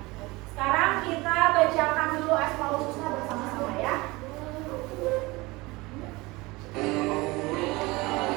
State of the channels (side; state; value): left; quieter; 22.5 dB